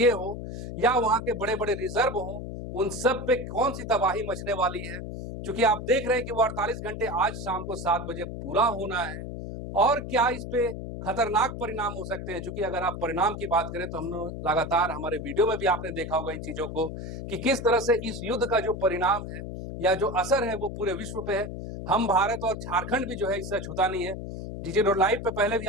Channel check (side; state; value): left; noise; hum, 7 dB below the sound